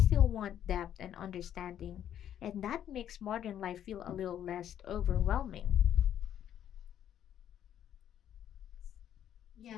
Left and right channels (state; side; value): quieter; right; 10.3 dB